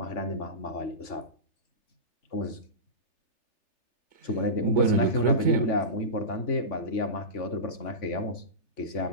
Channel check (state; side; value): late; right; 3.5 ms